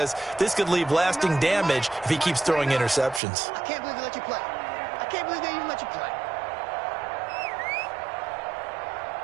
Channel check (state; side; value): drops out; left; at 3.2 s